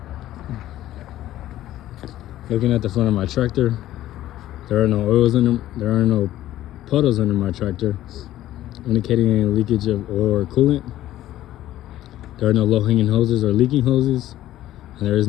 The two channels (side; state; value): right; quieter; 13.9 dB